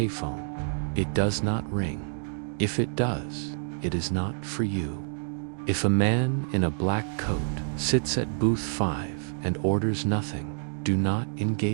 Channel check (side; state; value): left; silent; digital silence